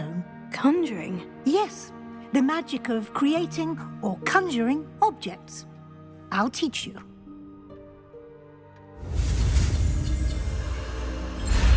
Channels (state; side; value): identical; both; correlation 1.00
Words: Conjuring? Yes, the magic of creating or conjuring objects. I'll teach you.